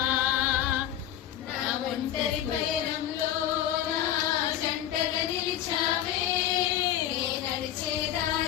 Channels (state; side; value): quieter; right; 11.5 dB